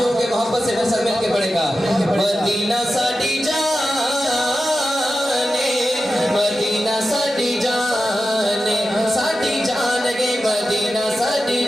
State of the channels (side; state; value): both; normal; correlation 0.92